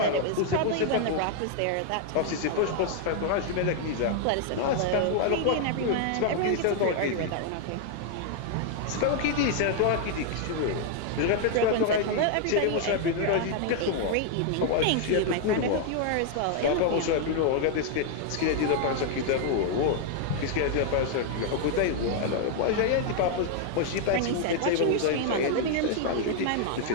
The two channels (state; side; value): different; both; correlation 0.00